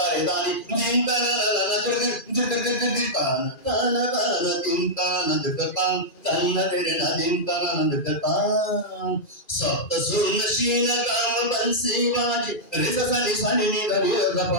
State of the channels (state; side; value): late; right; 2.4 ms